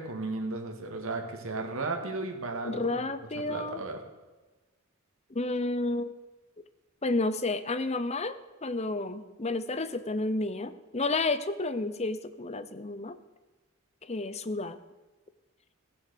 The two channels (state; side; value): normal; both; correlation 0.30